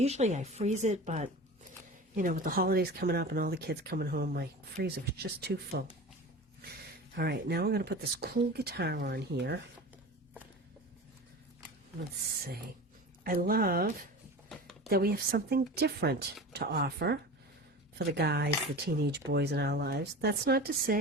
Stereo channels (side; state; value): both; normal; correlation 0.33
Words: I freeze it, but, you know, with the holidays coming up and all the kids coming home, my freezer was just too full. All right, now I'm going to put this cool guitar on here. Let's see. I love that we have something different to offer for the guys, the teenage boys in our lives. That's not to